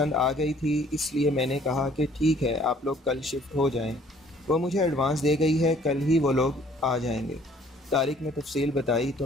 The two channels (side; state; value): both; normal; correlation 0.58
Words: آ گئی تھی، اس لیے میں نے کہا کہ ٹھیک ہے، آپ لوگ کل شفٹ ہو جائیں۔ وہ مجھے ایڈوانس دے گئی ہے، کل ہی وہ لوگ آ جائیں گے۔ طارق نے تفصیل بتائی تو